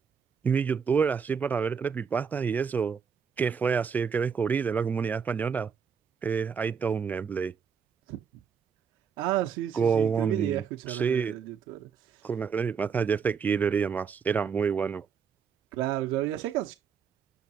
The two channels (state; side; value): quieter; left; 6.5 dB